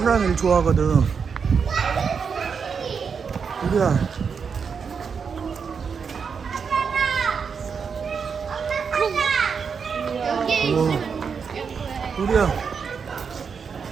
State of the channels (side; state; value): left; quieter; 6.1 dB